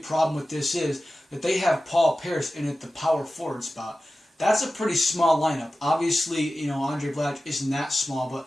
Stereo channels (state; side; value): normal; both; correlation 0.94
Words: problem with this is that they have Paul Pierce in at the power forward spot. That's a pretty small lineup. Obviously, Andre Blatche isn't that small,